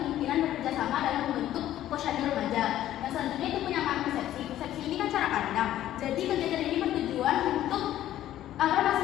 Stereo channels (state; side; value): quieter; right; 12.8 dB